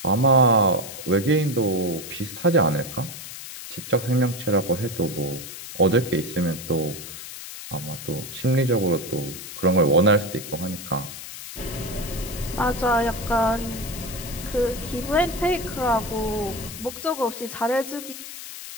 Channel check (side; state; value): left; noise; hiss, 11 dB below the sound